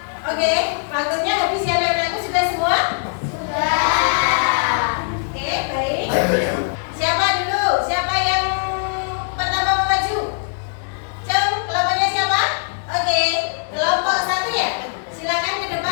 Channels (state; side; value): silent; right; 61 dB below the other